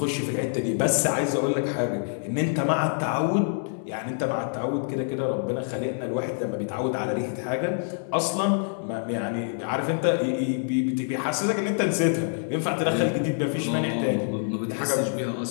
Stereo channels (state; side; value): silent; right; 61 dB below the other